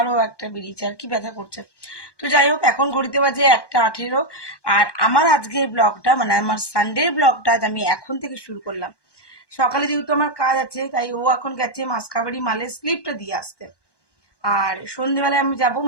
একটা বেরিয়েছে, আর কি ব্যথা করছে। তো যাই হোক, এখন ঘড়িতে বাজে 1:18, আর আমার আজকের ব্লগটা মানে আমার সানডের ব্লগটা আমি এখন থেকে শুরু করলাম। সকালে যেহেতু আমার কাজ আছে, তাই ও এখন গেছে মাসকাবাড়ি মালের স্লিপটা দিয়ে আসতে, আর সন্ধ্যেবেলায় আমি যাবো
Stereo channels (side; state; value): right; late; 1.1 ms